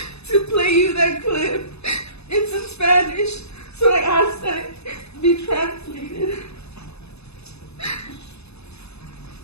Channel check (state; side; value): late; right; 0.79 ms